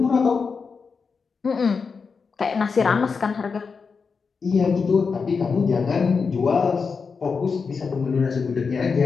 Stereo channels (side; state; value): right; quieter; 5.2 dB